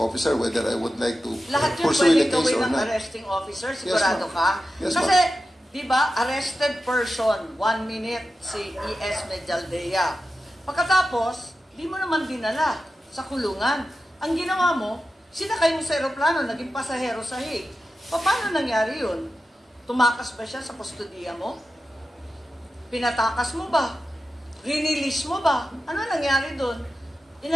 officer whether I would like to Lahat yun pursue pwede the case gawin or ng not. arresting officer, Yes, sigurado ma'am. ka? Yes, Kasi, ma'am. di ba, arrested person, 1 minute si E.S. Medialdea. Pagkatapos, di mo naman dinala sa kulungan. Ang ginawa mo, sinakay mo sa aeroplano, naging pasahero sa Hague. Paano nangyari yun? Tumakas ba siya sa kustodiya mo? Pinatakas mo ba? Rinilis mo ba? Ano nangyari doon?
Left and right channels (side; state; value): both; normal; correlation 0.92